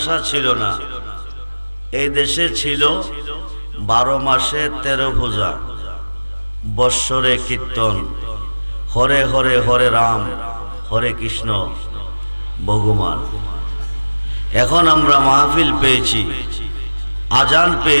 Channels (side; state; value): both; inverted; correlation -1.00